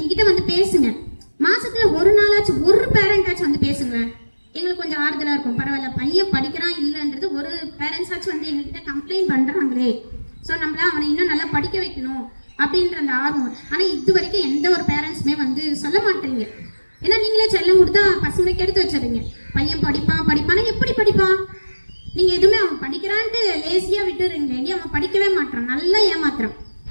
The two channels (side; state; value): both; inverted; correlation -1.00